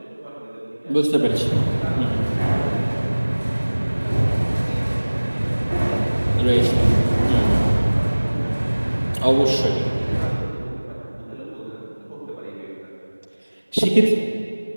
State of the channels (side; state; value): both; inverted; correlation -1.00